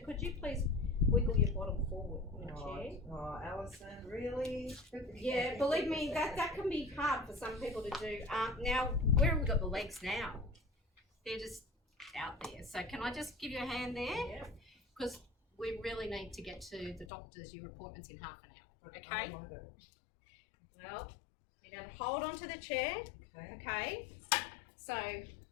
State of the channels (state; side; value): drops out; right; at 17.1 s